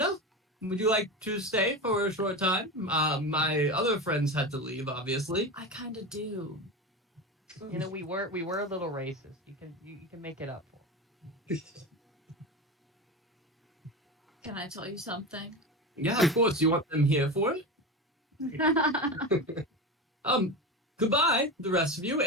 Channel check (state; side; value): normal; both; correlation 0.23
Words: would you like to stay for a short time? My other friends had to leave, obviously. I kind of do. You know, we were a little racist. You can make it up for. Can I tell you something? Yeah, of course. You want them here for it? Goodbye, the rest of you.